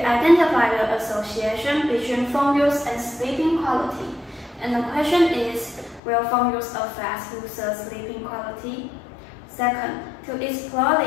the association between phone use and sleeping quality. And the question is, will phone use affect users' sleeping quality? Second, to explore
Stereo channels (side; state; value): right; drops out; at 6.0 s